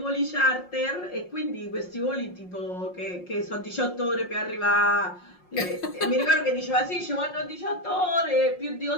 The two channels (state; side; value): late; right; 5.6 ms